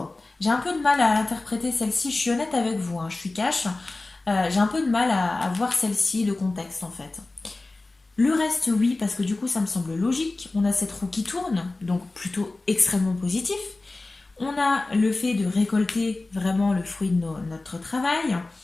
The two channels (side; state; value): right; quieter; 3.2 dB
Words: J'ai un peu de mal à interpréter celle-ci, je suis honnête avec vous, hein, je suis cash. J'ai un peu de mal à voir celle-ci, le contexte en fait. Le reste, oui, parce que du coup, ça me semble logique. On a cette roue qui tourne, donc plutôt extrêmement positif. On a le fait de récolter vraiment le fruit de notre travail.